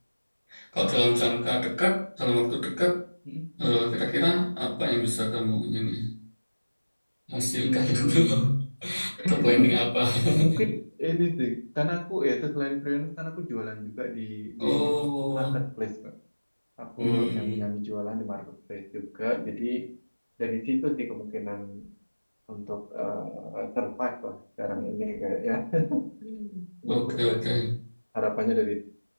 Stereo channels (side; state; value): both; inverted; correlation -1.00